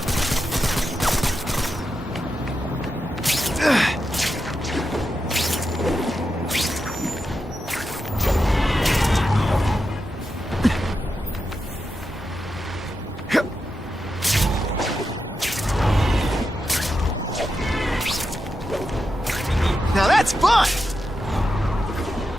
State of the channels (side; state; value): both; normal; correlation 0.88